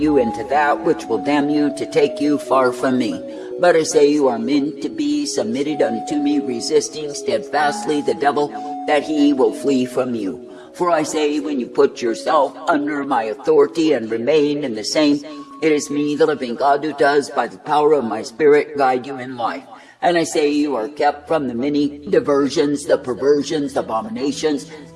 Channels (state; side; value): identical; both; correlation 1.00